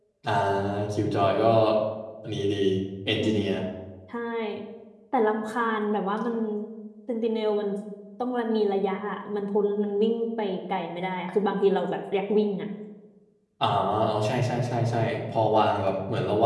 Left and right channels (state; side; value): identical; both; correlation 1.00